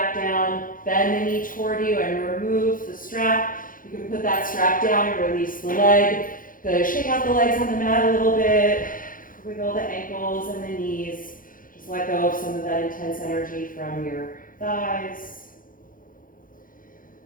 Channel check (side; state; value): right; late; 0.40 ms